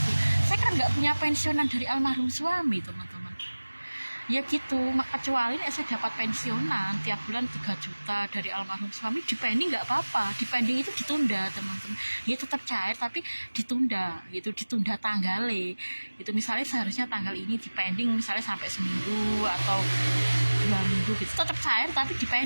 Saya kan nggak punya pensiunan dari almarhum suami teman-teman. Ya gitu, kecuali saya dapat pensiunan tiap bulan 3 juta dari almarhum suami, dipending nggak apa-apa. Dipending itu ditunda teman-teman, ya tetap cair tapi ditunda gitu, ditunda tanggalnya itu. Misalnya seharusnya tanggal ini dipending misalnya sampai seminggu atau 2 minggu gitu, tetap cair tapi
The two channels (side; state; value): both; inverted; correlation -1.00